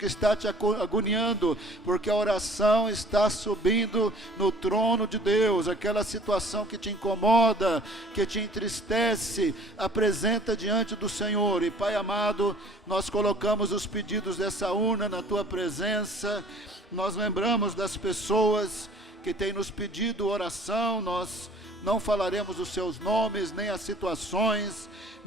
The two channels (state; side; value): normal; both; correlation 0.51